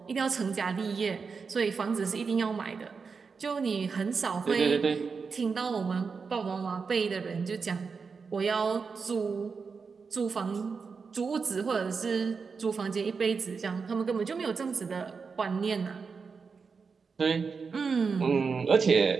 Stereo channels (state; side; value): quieter; left; 5.2 dB